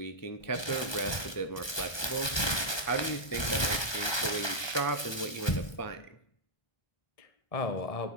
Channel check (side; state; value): right; late; 1.2 ms